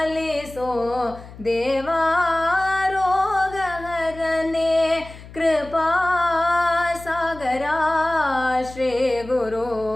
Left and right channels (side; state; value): left; noise; hum, 17 dB below the sound